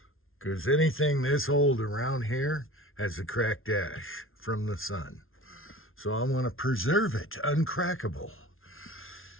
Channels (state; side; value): late; right; 0.60 ms